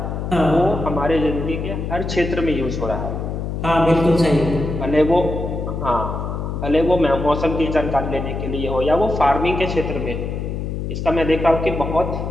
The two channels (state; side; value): noise; left; hum, 4 dB below the sound